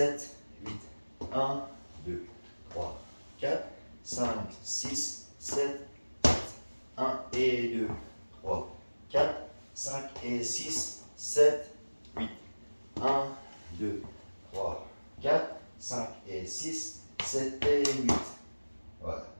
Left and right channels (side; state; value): both; inverted; correlation -1.00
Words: 8. 1, 2, 3, 4, 5, 6, 1, 2, 3, 4, 5 et 6, 7 et 8. Voilà.